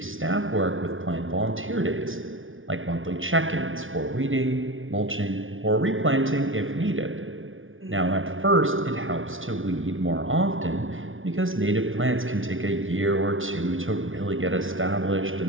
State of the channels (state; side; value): late; left; 0.57 ms